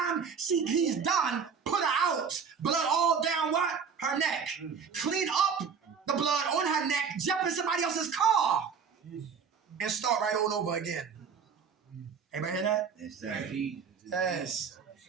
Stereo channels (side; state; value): left; quieter; 6.3 dB